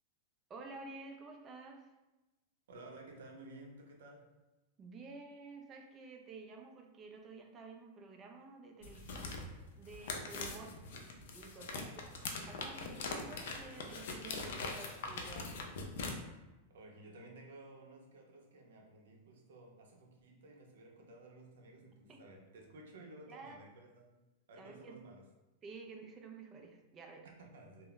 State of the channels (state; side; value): normal; both; correlation -0.11